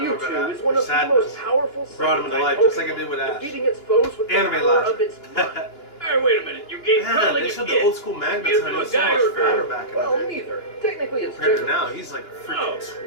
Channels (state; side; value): late; right; 2.9 ms